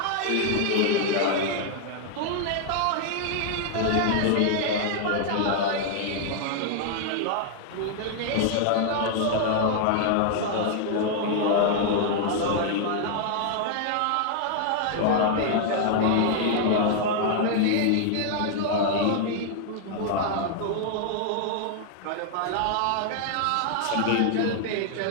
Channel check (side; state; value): both; different; correlation 0.00